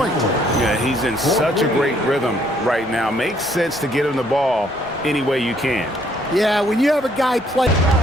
Yeah, he's in such a great rhythm right now. Makes sense to get him the ball any way you can. Yeah, when you have a guy play.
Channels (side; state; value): both; normal; correlation 0.66